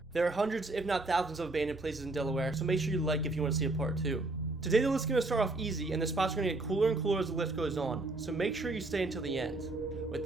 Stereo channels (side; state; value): left; quieter; 3.0 dB